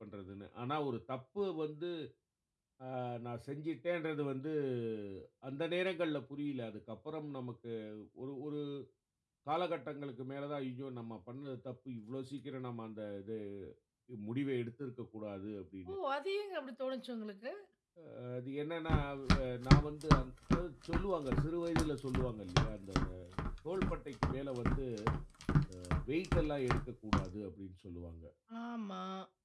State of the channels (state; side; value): identical; both; correlation 1.00